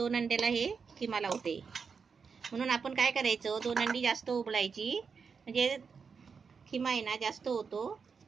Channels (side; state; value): left; quieter; 5.6 dB